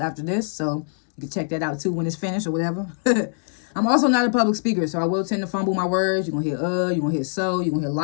this. So you can check that out too when it's finished or whatever. I'm also not a public speaker, so I will tend to fumble my words. You're going to hear you're going to hear so, you're going to hear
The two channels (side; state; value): right; silent; digital silence